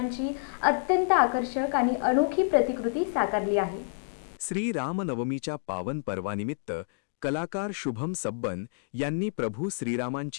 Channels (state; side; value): silent; right; digital silence